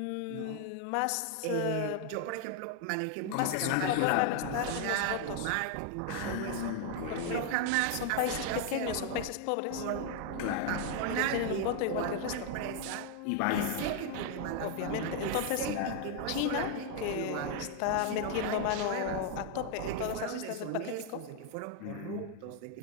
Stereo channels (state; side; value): different; both; correlation 0.00